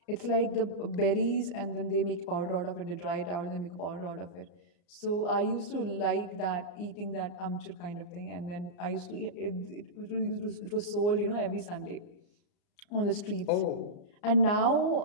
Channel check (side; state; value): right; late; 34 ms